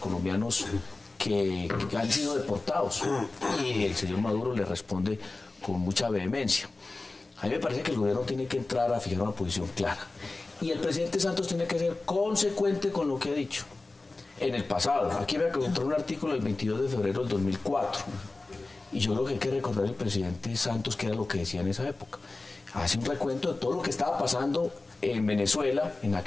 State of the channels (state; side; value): quieter; right; 3.3 dB